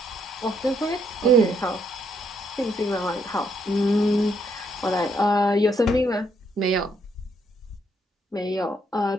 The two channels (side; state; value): both; normal; correlation 0.72